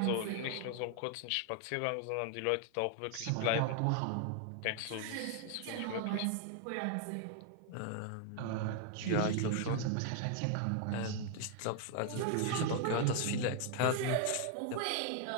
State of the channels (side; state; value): both; different; correlation 0.00